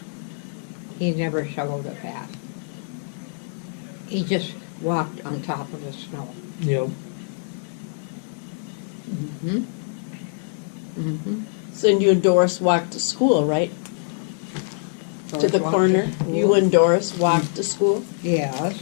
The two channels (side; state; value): right; silent; digital silence